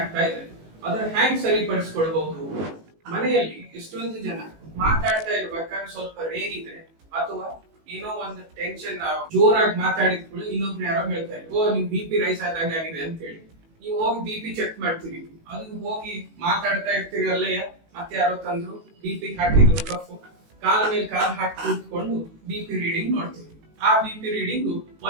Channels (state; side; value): late; left; 18 ms